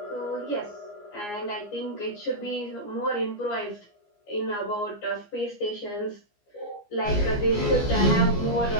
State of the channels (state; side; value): late; right; 14 ms